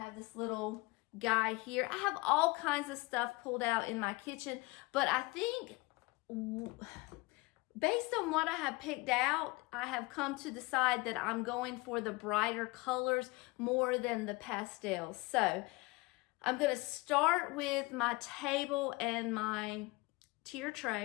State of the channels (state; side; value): quieter; right; 23.9 dB